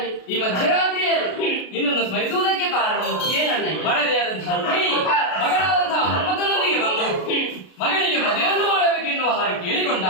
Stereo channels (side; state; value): right; late; 33 ms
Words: ಈ ಮಧ್ಯರಾತ್ರಿಯಲ್ಲಿ ನಿನ್ನನ್ನು ಸ್ಮರಿಸುವುದಕ್ಕೆ ಕಾರಣ ಏನನ್ನ ಮಡದಿಯಾದಂತಹ ರುಕ್ಮಿಣಿ ಮಗನಾದಂತಹ ಮನ್ಮಥನೊಂದಿಗೆ ಬಂದು ಮಗನಿಗೆ ಮದುವೆಯನ್ನು ಮಾಡಬೇಕೆನ್ನುವ ಹಾಗೆ